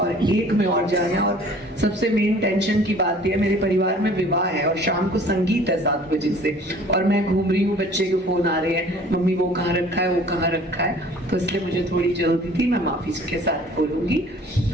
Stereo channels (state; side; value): normal; both; correlation 0.50